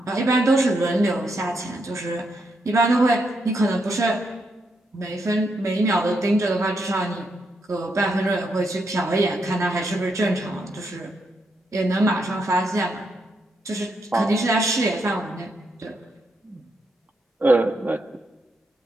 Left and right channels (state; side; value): normal; both; correlation 0.80